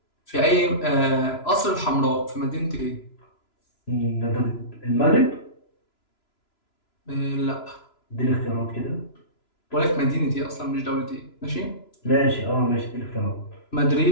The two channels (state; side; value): late; right; 3.0 ms